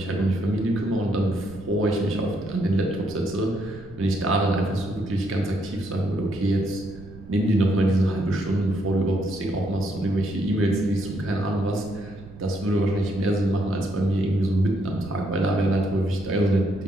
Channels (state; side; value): noise; right; rumble, 17 dB below the sound